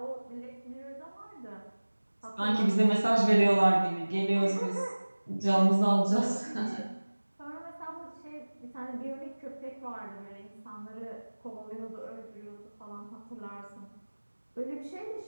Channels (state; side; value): inverted; both; correlation -1.00